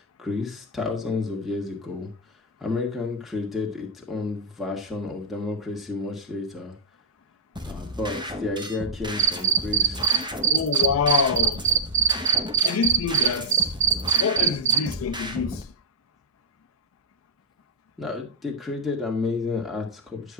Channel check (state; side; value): normal; both; correlation -0.06